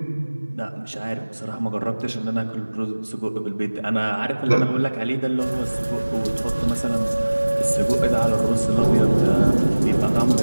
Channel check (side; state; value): both; inverted; correlation -1.00